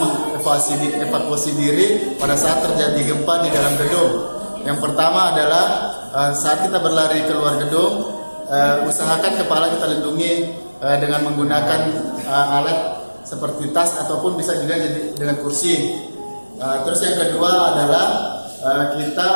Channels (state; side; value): inverted; both; correlation -1.00